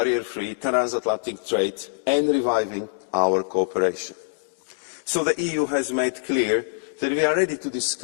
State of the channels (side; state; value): right; silent; digital silence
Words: transatlantic trade and reviving our cooperation. So the EU has made clear that we are ready to